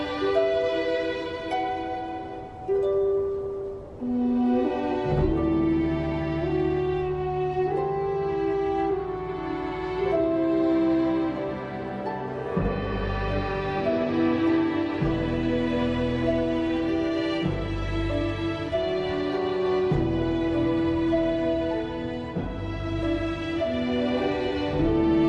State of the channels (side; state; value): both; identical; correlation 1.00